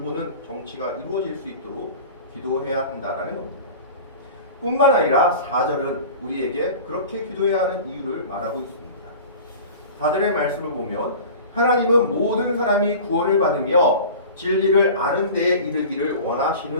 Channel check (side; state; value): both; inverted; correlation -0.38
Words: 정치가 이루어질 수 있도록 기도해야 한다라는 겁니다. 뿐만 아니라 4절은 우리에게 그렇게 기도해야 하는 이유를 말하고 있습니다. 4절의 말씀을 보면 하나님은 모든 사람이 구원을 받으며 진리를 아는 데에 이르기를